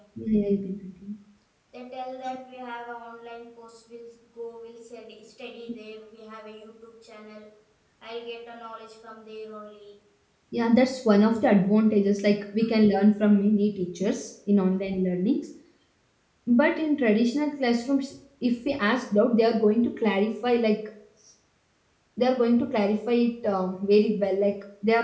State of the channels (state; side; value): identical; both; correlation 1.00